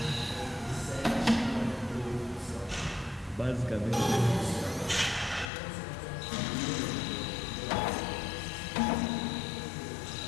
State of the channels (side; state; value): right; drops out; at 5.5 s